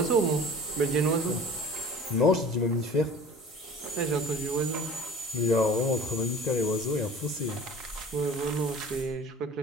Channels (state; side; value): normal; both; correlation 0.43